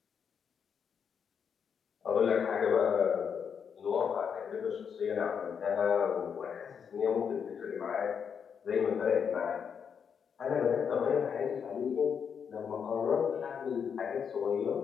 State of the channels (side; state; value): right; quieter; 7.0 dB